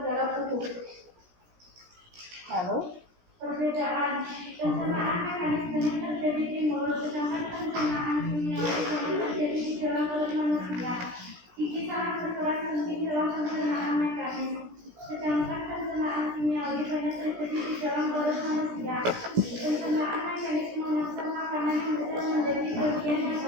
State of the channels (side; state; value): left; late; 17 ms